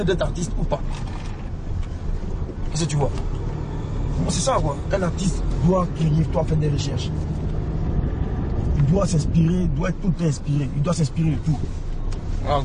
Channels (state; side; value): identical; both; correlation 1.00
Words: d'être artiste ou pas. Qu'est-ce que tu vois? C'est ça quoi. Un artiste doit créer, doit faire des recherches. Il doit s'inspirer, il doit être tout le temps inspiré. Il doit s'inspirer de tout. Voilà,